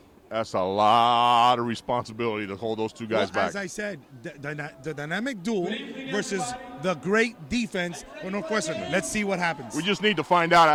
that's a lot of responsibility to hold those 2 guys back. As I said, the dynamic duel versus the great defense for Northwestern. Let's see what happens. We just need to find out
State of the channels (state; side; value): identical; both; correlation 1.00